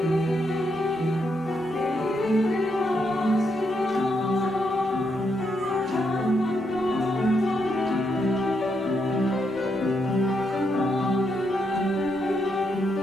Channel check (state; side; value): normal; both; correlation 0.79